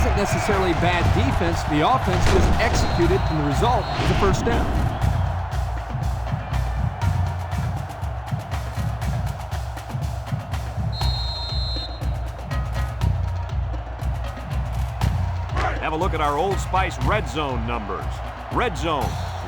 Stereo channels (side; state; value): both; identical; correlation 1.00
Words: necessarily bad defense. The offense was executed, and the result is a first down. Have a look at our Old Spice Red Zone numbers. Red Zone,